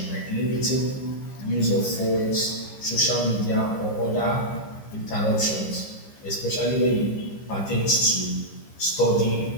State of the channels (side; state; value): right; late; 15 ms